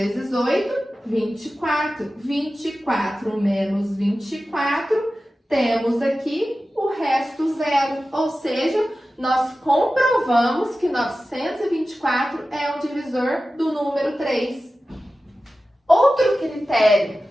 8, 24. 24 menos 24, temos aqui o resto zero. Ou seja, nós comprovamos que 924 é um divisor do número 3. Outro critério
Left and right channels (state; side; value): normal; both; correlation 0.95